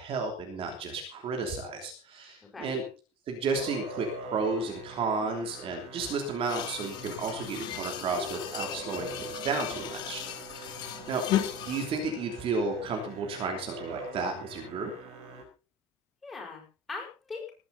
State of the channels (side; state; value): both; normal; correlation 0.31